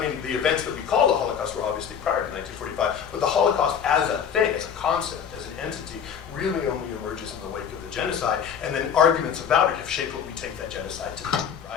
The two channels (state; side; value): quieter; right; 7.8 dB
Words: the events that we call the Holocaust were obviously prior to 1945, but the Holocaust as a thing, as a concept, as an entity, really only emerges in the wake of the genocide, and then arguments about it have shaped what we take that genocide to be,